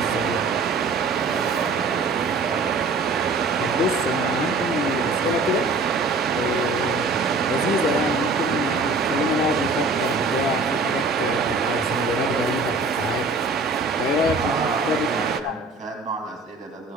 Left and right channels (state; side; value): quieter; left; 3.5 dB